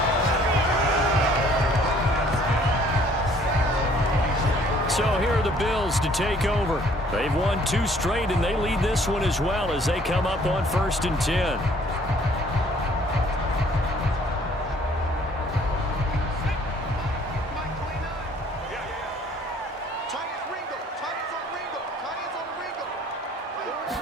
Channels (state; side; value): normal; both; correlation 0.58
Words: So here are the Bills to take over. They've won 2 straight, and they lead this one as well as they come up on 1st and 10.